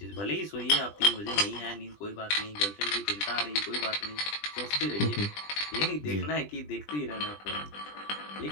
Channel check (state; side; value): late; right; 20 ms